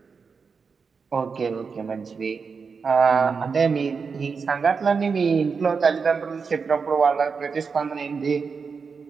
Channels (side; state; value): left; quieter; 5.3 dB